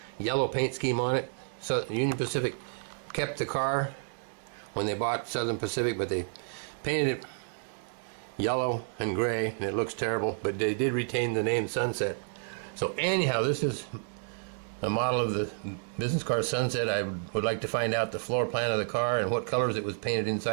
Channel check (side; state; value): left; silent; digital silence